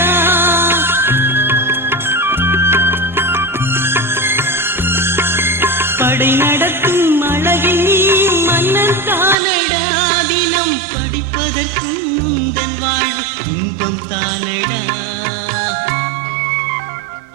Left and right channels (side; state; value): left; drops out; at 9.3 s